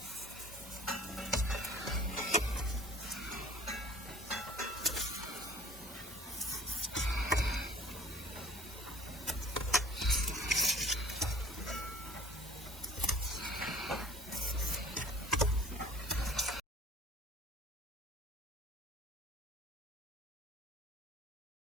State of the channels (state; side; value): normal; both; correlation 0.51